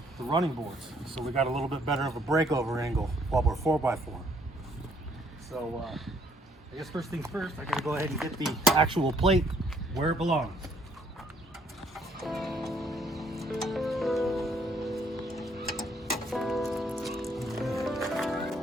the running boards, so we got a little bit better of a breakover angle while we're 4x4. So I guess first things first, I gotta go ahead and get the actual plate where it belongs.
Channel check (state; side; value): normal; both; correlation 0.66